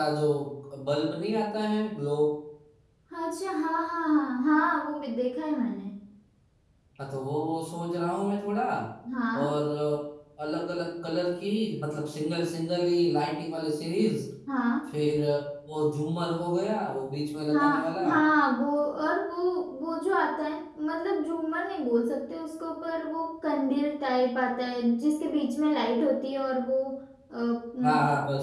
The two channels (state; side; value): identical; both; correlation 1.00